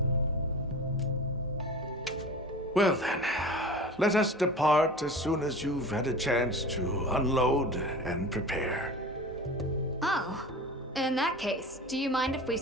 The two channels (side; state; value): both; normal; correlation 0.35